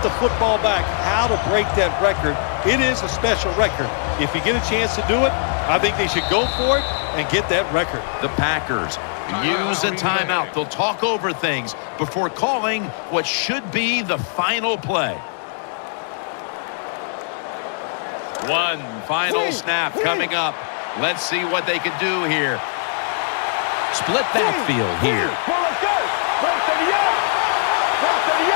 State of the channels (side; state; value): right; silent; digital silence